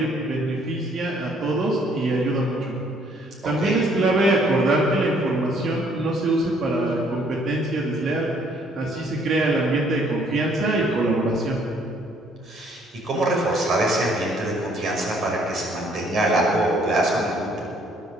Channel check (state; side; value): normal; both; correlation 0.64